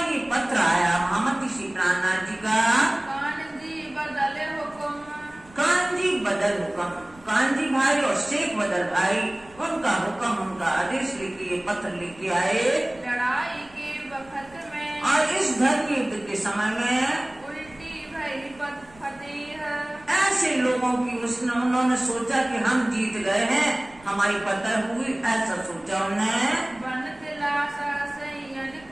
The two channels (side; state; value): right; noise; rumble, 25 dB below the sound